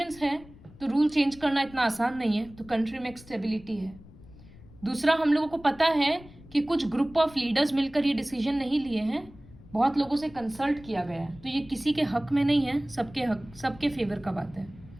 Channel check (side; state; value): left; noise; rumble, 21 dB below the sound